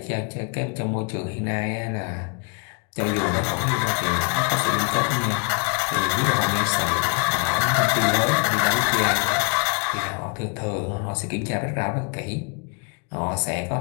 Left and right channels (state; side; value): quieter; right; 37.0 dB